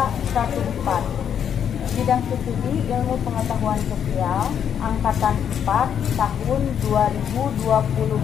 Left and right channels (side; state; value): right; quieter; 8.5 dB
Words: Bidang Studi Ilmu Pengetahuan Sosial Angkatan 4 tahun